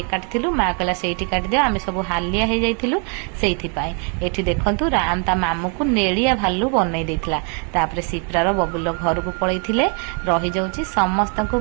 काटिलु माँ कहला से काटिदे आम सब हालिया हो जाइलु से देखु राम ता मामू को नेड़िया भालू बनई देता। तापर सिप्रार बबुल घर को पलैले रही जाऊँ समस्त को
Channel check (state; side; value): quieter; left; 38.4 dB